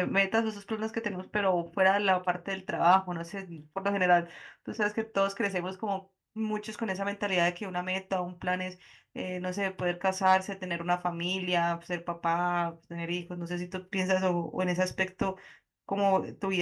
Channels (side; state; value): both; identical; correlation 1.00